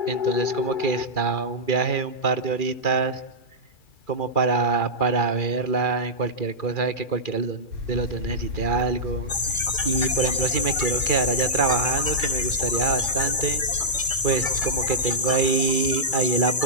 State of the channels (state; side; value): late; right; 2.3 ms